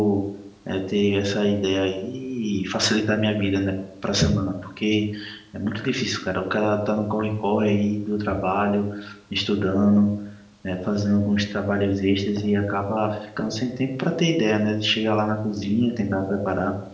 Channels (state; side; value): identical; both; correlation 1.00